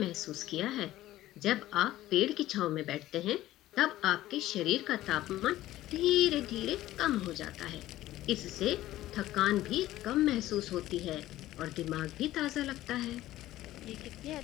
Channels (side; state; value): right; quieter; 15.0 dB